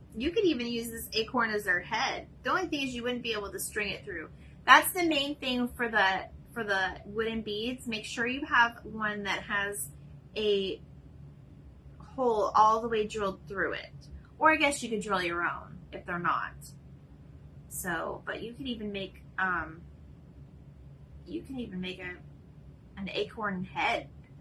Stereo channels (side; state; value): both; identical; correlation 1.00